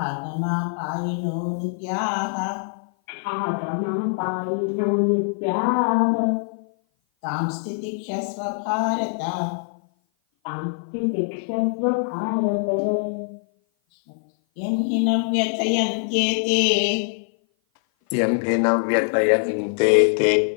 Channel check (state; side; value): silent; right; 56 dB below the other